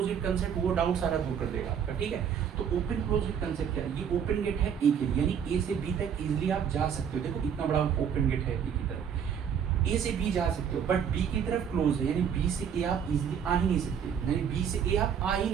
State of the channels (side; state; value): left; quieter; 7.9 dB